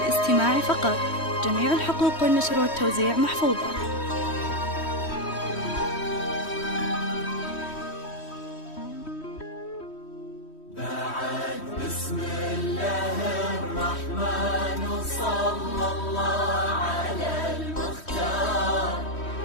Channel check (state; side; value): late; right; 3.1 ms